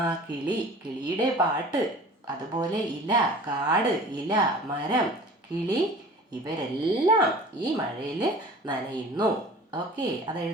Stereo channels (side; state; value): both; normal; correlation 0.43